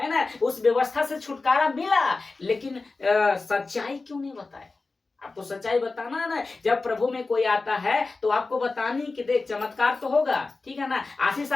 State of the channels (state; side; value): quieter; right; 3.7 dB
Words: ना, उस व्यवस्था से छुटकारा मिला, लेकिन सच्चाई क्यों नहीं बताए? आपको सच्चाई बताना है ना। जब प्रभु में कोई आता है तो आपको बतानी कि देख चमत्कार तो होगा, ठीक है ना, आशीष